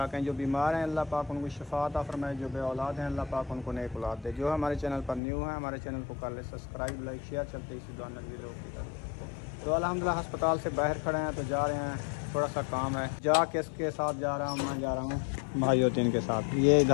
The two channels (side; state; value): right; drops out; at 5.2 s